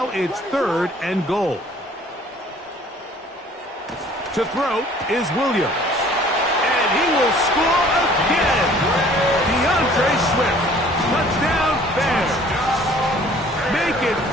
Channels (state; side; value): normal; both; correlation 0.53